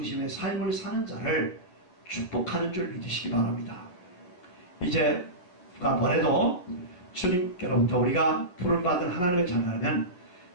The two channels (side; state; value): right; late; 11 ms